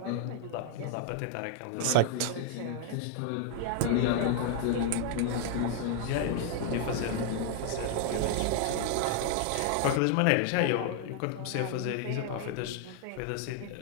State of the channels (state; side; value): different; both; correlation 0.00